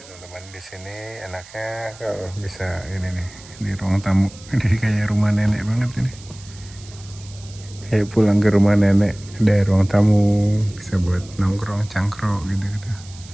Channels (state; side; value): noise; right; hiss, 20 dB below the sound